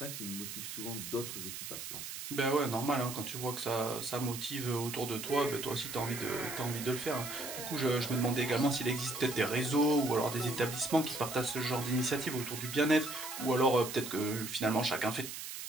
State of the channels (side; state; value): right; noise; hiss, 8 dB below the sound